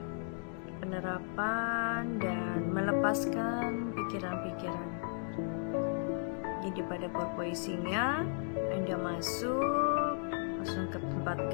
penerapan dan melepaskan pikiran-pikiran. Jadi pada purposingnya Anda masuk langsung ke tempat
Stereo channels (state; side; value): silent; right; 54 dB below the other